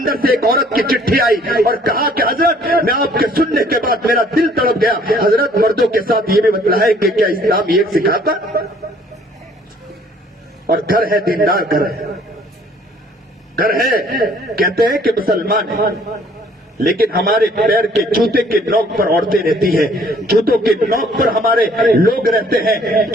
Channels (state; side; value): normal; both; correlation 0.59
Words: سے ایک عورت کی چٹھی آئی اور کہا کہ حضرت میں آپ کے سننے کے بعد میرا دل تڑپ گیا، حضرت مردوں کے ساتھ یہ بھی بتلا ہے کہ کیا اسلام یہ سکھاتا؟ اور گھر ہے، دیندار گھر ہے، کہتے ہیں کہ مسلمان ہے، لیکن ہمارے پیر کے جوتے کے نوک پر عورتیں رہتی ہیں، جوتوں کے نوک پر ہمارے لوگ رہتے ہیں،